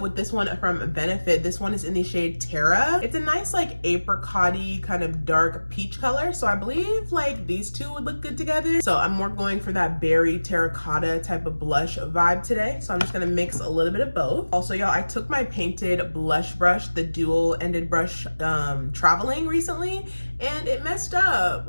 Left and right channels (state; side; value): inverted; both; correlation -1.00